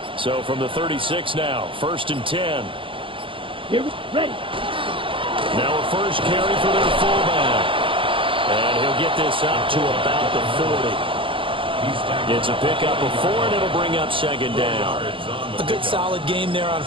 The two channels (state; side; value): late; left; 0.25 ms